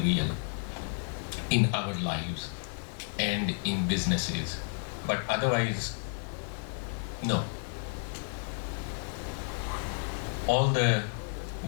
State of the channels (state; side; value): silent; right; 57 dB below the other